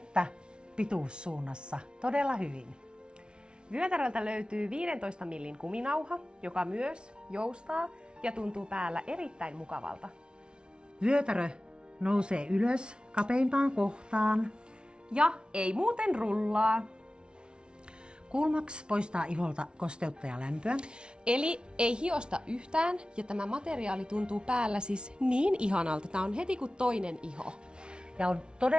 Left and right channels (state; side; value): late; left; 0.056 ms